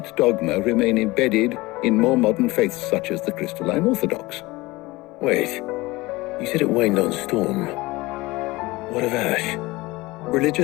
dogma remain embedded in more modern faiths such as the Crystalline Orthodox. Wait, you said it waned on Storm. What of Ash?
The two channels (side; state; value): right; quieter; 21.0 dB